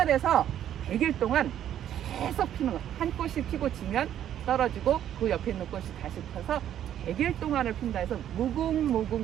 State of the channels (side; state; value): left; quieter; 10.7 dB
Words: 100일 동안 계속 피는 거. 한 꽃이 피고 지면 떨어지고 그 옆에 있는 꽃이 다시 펴서 100일 동안을 핀다 해서